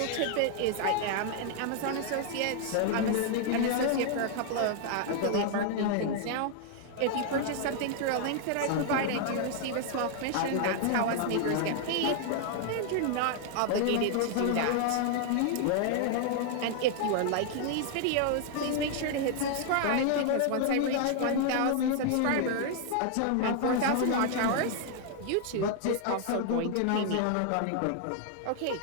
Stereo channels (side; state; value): both; different; correlation 0.00